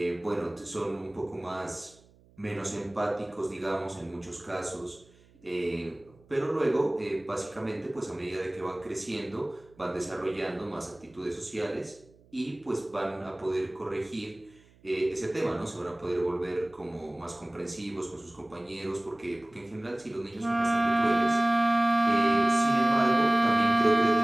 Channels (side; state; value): right; noise; hum, 29 dB below the sound